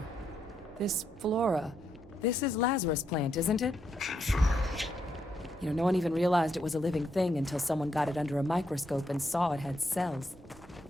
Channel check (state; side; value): normal; both; correlation 0.79